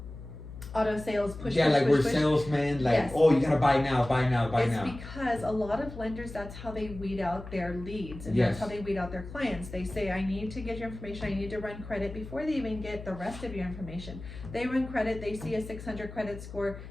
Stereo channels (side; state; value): left; noise; hum, 13 dB below the sound